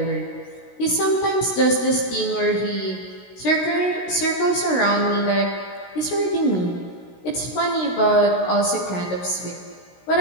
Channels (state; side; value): late; right; 16 ms